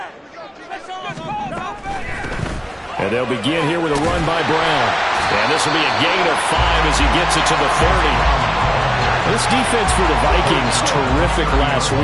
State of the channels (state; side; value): identical; both; correlation 1.00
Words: And they'll begin here with a run by Brown. And this will be a gain of 5 as he gets it to the 30. This defense for the Vikings, terrific last